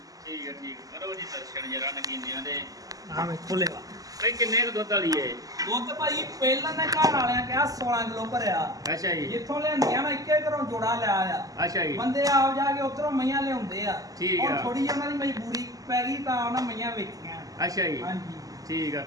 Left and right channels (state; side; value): late; left; 0.17 ms